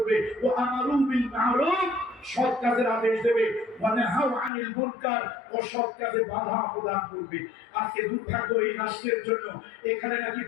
ও আমারু বিল মারুফ, সৎ কাজের আদেশ দেবে, ওয়া নাহাউ আনিল মুনকার, অসৎ কাজে বাধা প্রদান করবে। আজকে দুর্ভাগ্য এই রাষ্ট্রের জন্য, এখানে নাকি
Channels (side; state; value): right; drops out; at 4.5 s